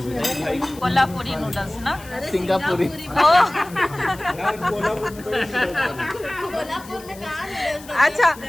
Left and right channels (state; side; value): noise; left; hiss, 20 dB below the sound